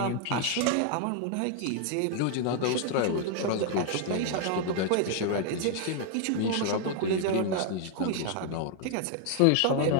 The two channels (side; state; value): both; different; correlation 0.00